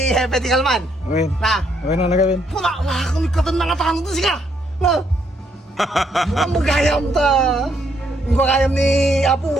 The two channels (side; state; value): both; normal; correlation 0.73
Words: Hepe di Kalman. Win. Na? Win na Kevin. Wala kami katan na katano to siya. Na? Ang magayam ta. Yung kagayam ni Apo